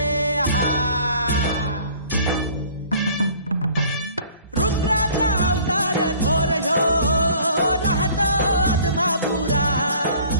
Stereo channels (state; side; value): inverted; both; correlation -0.51